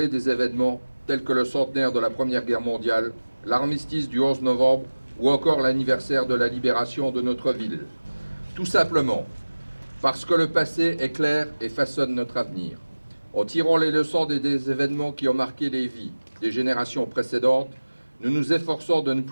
des événements tels que le centenaire de la Première Guerre mondiale, l'armistice du 11 novembre ou encore l'anniversaire de la libération de notre ville? Tout simplement parce que le passé est clair et façonne notre avenir. En tirant les leçons des événements qui ont marqué les vies des générations précédentes, nous nous efforçons de ne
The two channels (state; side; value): inverted; both; correlation -1.00